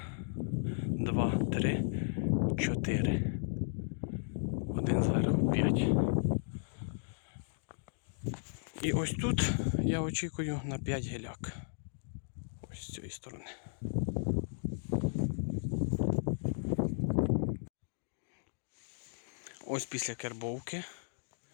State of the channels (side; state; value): right; silent; digital silence